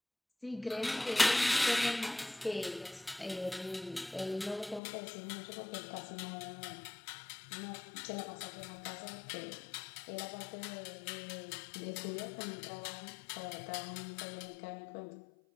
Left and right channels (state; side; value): drops out; right; at 4.8 s